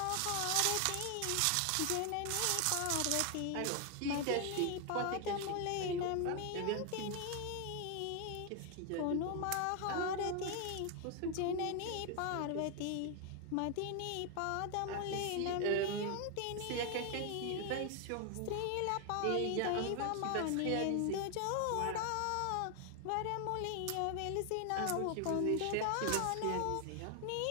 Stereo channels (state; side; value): different; both; correlation 0.00